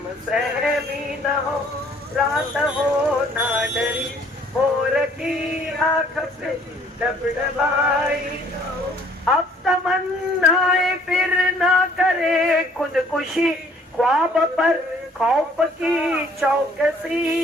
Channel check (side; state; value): both; normal; correlation 0.59